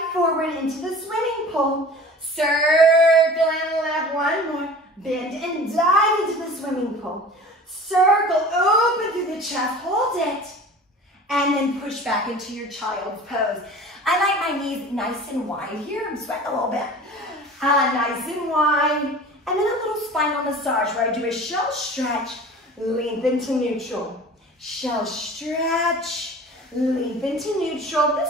forward into the swimming pool. Circle and lift. 1 more. Bend and dive into the swimming pool. Circle, open through the chest, hold it. And then push back into your child's pose. I like my knees nice and wide here. I'm sweating a little bit. Nice and wide. And then a little spinal massage where I do a shell stretch, lengthen to neutral. Shell stretch, lengthen to neutral.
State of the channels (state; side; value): normal; both; correlation 0.41